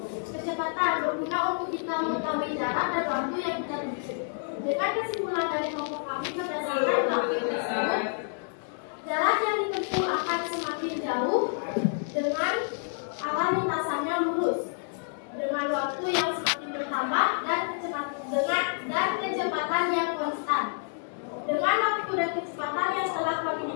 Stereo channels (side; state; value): right; silent; digital silence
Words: kecepatan berguna untuk kita mengetahui jarak dan waktu yang kita tuju. Dengan kesimpulan dari kelompok kami berdasarkan grafik tersebut, jarak yang ditempuh akan semakin jauh dengan arah lintasannya lurus, dengan waktu yang semakin bertambah dan kecepatan yang konstan. Dengan waktu dan kecepatan yang telah kami